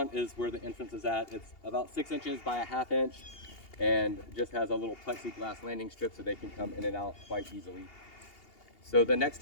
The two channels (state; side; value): late; right; 2.8 ms